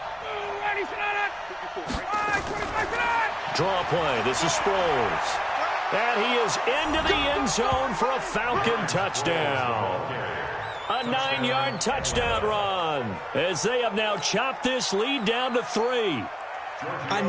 Draw play. This is Sproles. And he is into the end zone for a Falcon touchdown. A 9-yard touchdown run as they have now chopped this lead down to 3. I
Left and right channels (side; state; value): both; identical; correlation 1.00